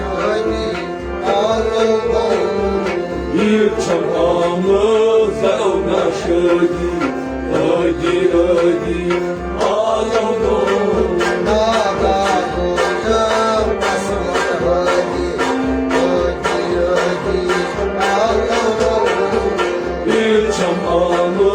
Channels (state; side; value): identical; both; correlation 1.00